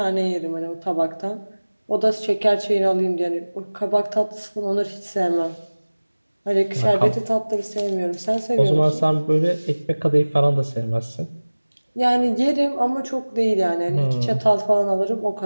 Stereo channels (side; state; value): both; inverted; correlation -1.00